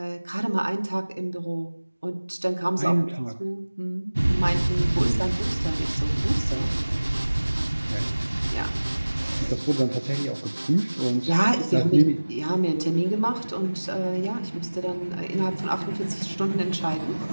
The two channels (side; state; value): both; inverted; correlation -1.00